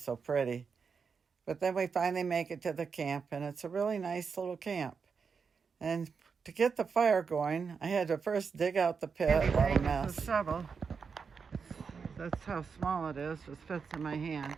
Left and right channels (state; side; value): quieter; left; 5.7 dB